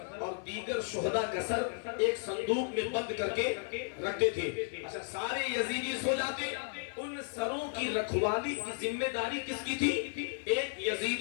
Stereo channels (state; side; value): silent; right; 55 dB below the other